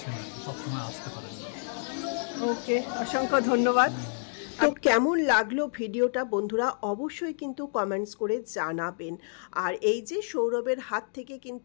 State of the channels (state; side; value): silent; right; digital silence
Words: সবসময় আসতে পারেন না। ওকে, অসংখ্য ধন্যবাদ। তো কেমন লাগলো ভিডিওটা বন্ধুরা অবশ্যই কিন্তু কমেন্টস করে জানাবেন। আর এই যে সৌরভের হাত থেকে